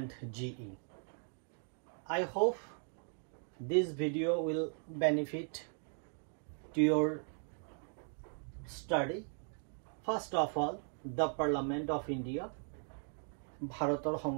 GE. I hope this video will benefit to your study. First of all, the Parliament of India, Bharator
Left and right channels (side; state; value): left; silent; 52 dB below the other